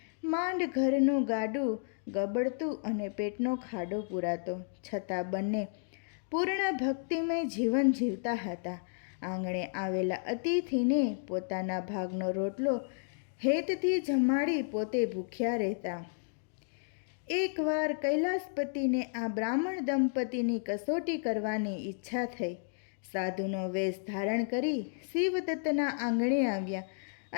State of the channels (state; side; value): silent; right; digital silence